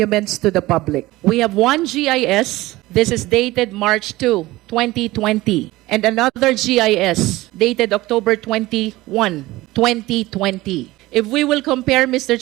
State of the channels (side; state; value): left; quieter; 18.6 dB